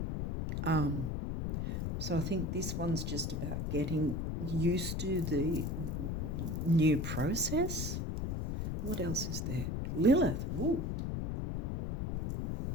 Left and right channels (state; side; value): noise; left; rumble, 2 dB below the sound